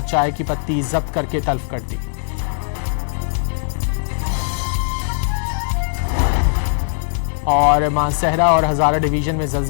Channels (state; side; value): silent; right; 66 dB below the other